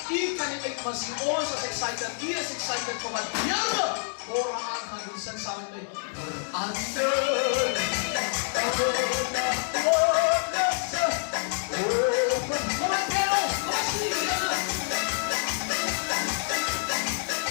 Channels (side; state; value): right; silent; 60 dB below the other